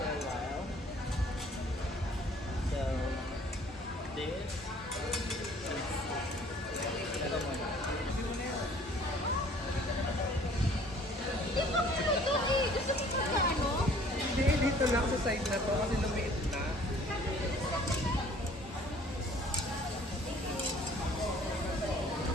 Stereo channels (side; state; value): both; normal; correlation 0.54